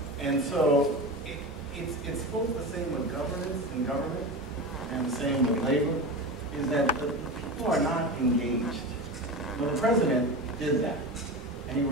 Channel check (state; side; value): normal; both; correlation 0.25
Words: And so it's both the same with governance and government, and the same with labor, is that the people are not engaged. Well, the president did that, and he